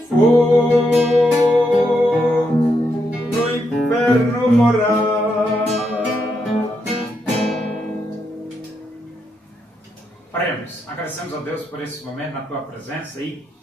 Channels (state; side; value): normal; both; correlation 0.81